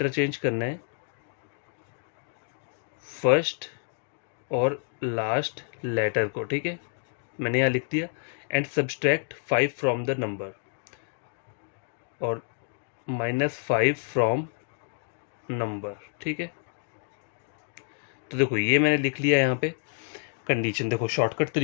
करना है फर्स्ट और लास्ट लेटर को। ठीक है, मैंने यहाँ लिख दिया। And subtract 5 from the number, और -5 फ्रॉम नंबर। ठीक है, तो देखो ये मैंने लिख लिया यहाँ पे कंडीशन। देखो शॉर्टकट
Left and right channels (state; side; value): silent; right; 59 dB below the other